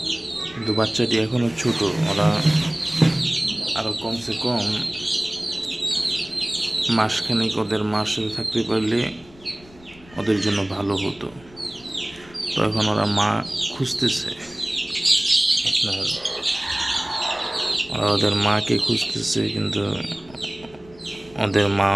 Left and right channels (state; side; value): noise; left; rumble, 24 dB below the sound